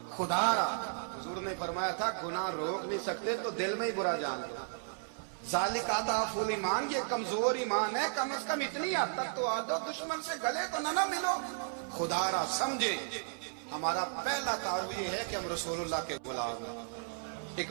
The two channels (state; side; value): silent; left; 55 dB below the other